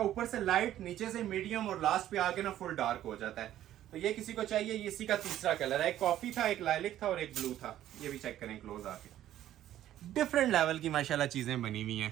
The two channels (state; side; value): quieter; left; 12.5 dB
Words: ऊपर से लाइट, नीचे से मीडियम, और लास्ट पे आके ना फुल डार्क हो जाता है। तो ये किसी को चाहिए, ये इसी का तीसरा कलर है। एक कॉफी था, एक लाइलिक था और एक ब्लू था। ये भी चेक करें क्लोज आके, डिफरेंट लेवल की माशाल्लाह चीजें बनी हुई